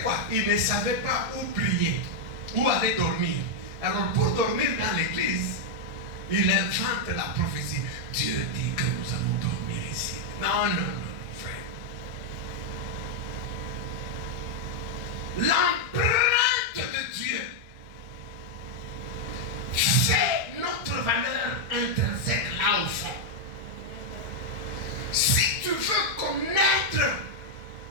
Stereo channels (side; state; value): left; late; 1.8 ms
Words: Il ne savait pas où prier, où aller dormir. Alors, pour dormir dans l'église, il invente la prophétie. Dieu dit que nous allons dormir ici. Non, frère. L'empreinte de Dieu fait notre valeur intrinsèque là au fond. Si tu veux connaître